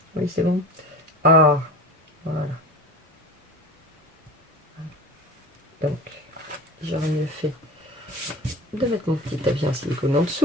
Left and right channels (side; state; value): both; normal; correlation 0.34